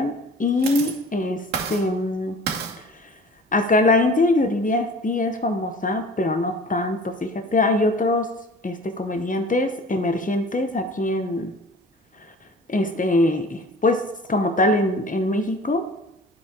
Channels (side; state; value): both; normal; correlation 0.43